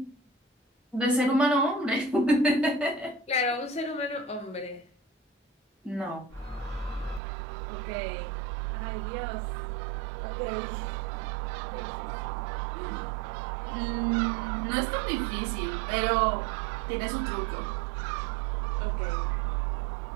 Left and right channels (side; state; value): left; drops out; at 7.2 s